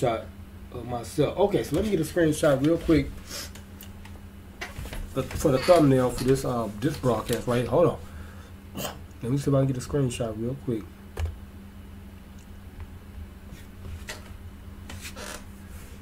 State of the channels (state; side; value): identical; both; correlation 1.00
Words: of myself. Okay, so let me get a screenshot real quick for the thumbnail for this broadcast right here. Hold on. Let me see if I can get a screenshot real quick.